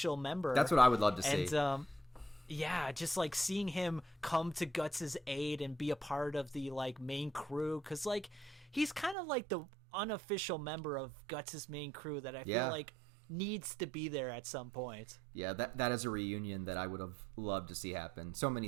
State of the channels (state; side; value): drops out; left; at 9.2 s